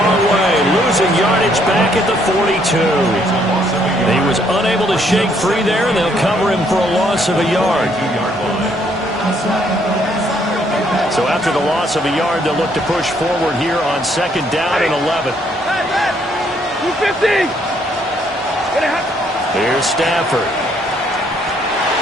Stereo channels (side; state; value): both; normal; correlation 0.68